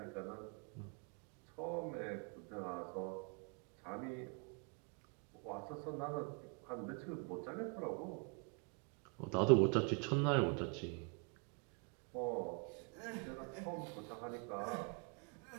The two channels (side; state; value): left; quieter; 36.5 dB